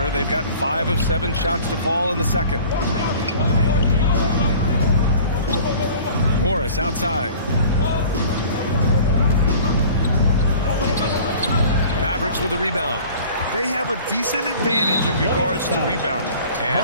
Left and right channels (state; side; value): inverted; both; correlation -0.46